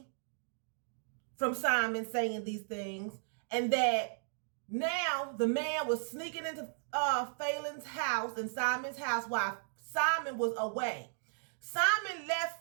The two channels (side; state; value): left; silent; digital silence